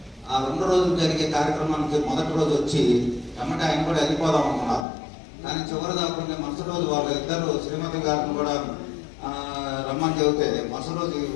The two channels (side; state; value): right; drops out; at 4.9 s